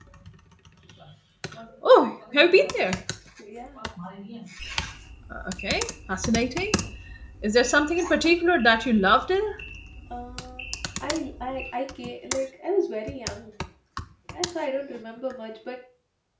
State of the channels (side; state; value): both; identical; correlation 1.00